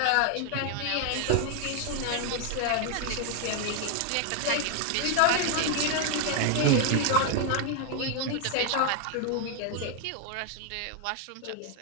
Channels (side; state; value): both; different; correlation 0.01